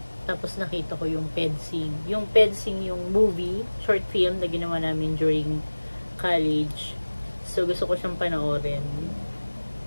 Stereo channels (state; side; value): inverted; both; correlation -1.00